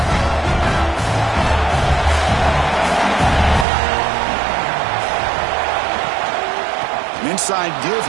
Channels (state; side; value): drops out; left; at 3.7 s